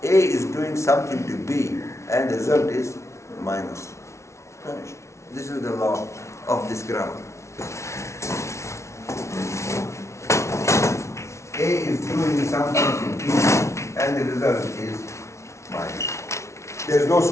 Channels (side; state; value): right; late; 0.13 ms